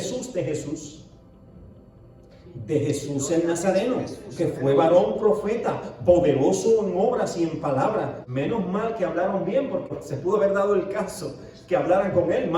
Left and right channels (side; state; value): both; identical; correlation 1.00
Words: de Jesús el Nazareno, que fue varón profeta, poderoso en obras y en palabras. Menos mal que hablaron bien, porque se pudo haber dado el caso que hablaran con él